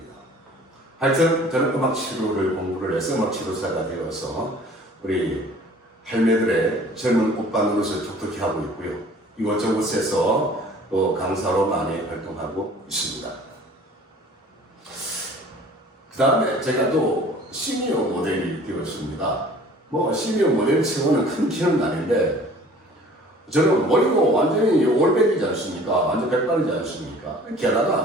하여튼 저는 음악 치료를 공부를 해서 음악 치료사가 되어서 우리 할매들의 젊은 오빠 노릇을 톡톡히 하고 있고요. 이곳저곳에서 또 강사로 많이 활동하고 있습니다. 그 다음에 제가 또 시니어 모델이 되었습니다. 뭐 시니어 모델 치고는 큰 키는 아닌데 저는 머리도 완전히 올백이지 않습니까? 완전 백발이지 않습니까?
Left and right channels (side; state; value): both; normal; correlation 0.49